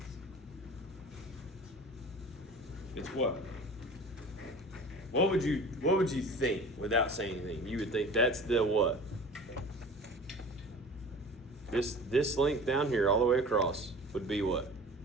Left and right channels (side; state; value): both; normal; correlation 0.40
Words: It's what? What would you think without saying anything? You would think that's the what? This length down here all the way across would be what?